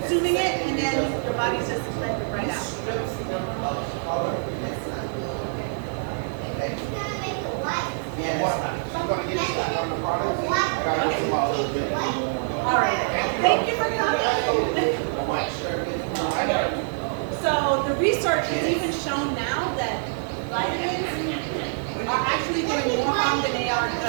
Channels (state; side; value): silent; left; 61 dB below the other